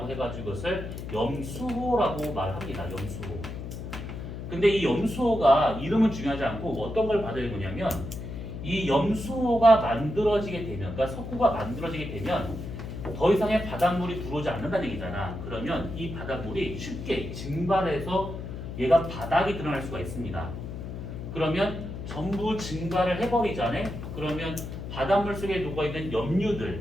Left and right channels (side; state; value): left; noise; hum, 8 dB below the sound